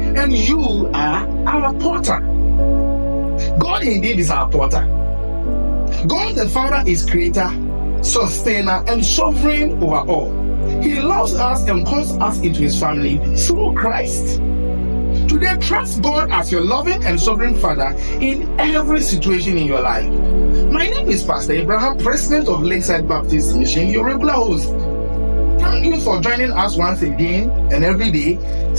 you are our potter. God indeed is our potter. God the Father is creator, sustainer, and sovereign over all. He loves us and calls us into his family through Christ. Today, trust God as your loving and sovereign Father in every situation in your life. My name is Pastor Abraham, President of Lakeside Baptist Mission, your regular host. Thank you for joining us once again and every day.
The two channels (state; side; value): inverted; both; correlation -1.00